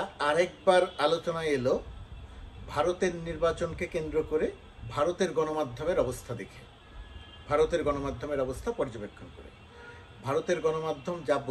আরেকবার আলোচনায় এলো ভারতের নির্বাচনকে কেন্দ্র করে ভারতের গণমাধ্যমের অবস্থা দেখে, ভারতের গণমাধ্যমের অবস্থা পর্যবেক্ষণ করে। ভারতের গণমাধ্যম যা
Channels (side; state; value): both; identical; correlation 1.00